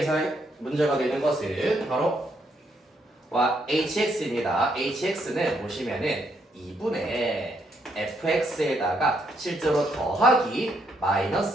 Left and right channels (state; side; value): normal; both; correlation 0.75